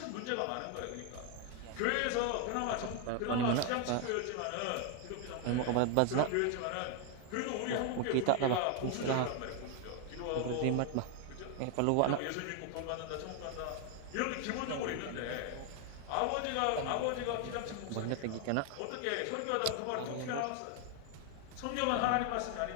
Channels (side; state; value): both; different; correlation 0.01